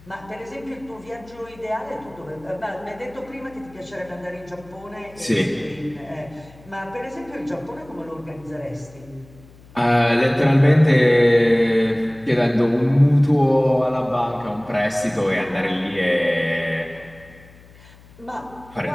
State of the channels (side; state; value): left; noise; hum, 24 dB below the sound